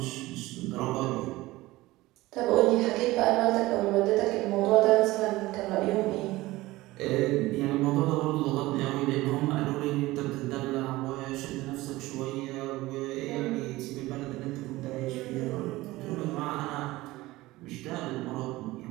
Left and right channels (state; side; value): quieter; left; 18.8 dB